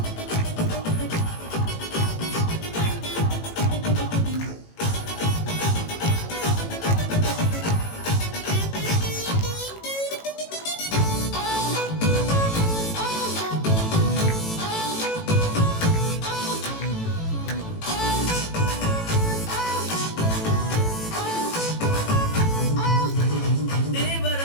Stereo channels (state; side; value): late; right; 18 ms